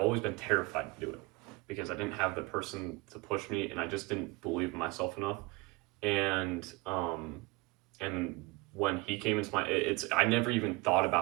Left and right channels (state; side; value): quieter; left; 23.8 dB